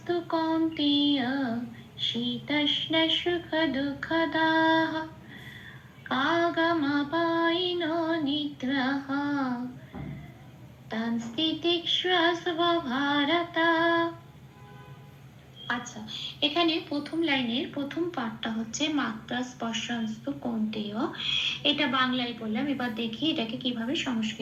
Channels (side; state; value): both; identical; correlation 1.00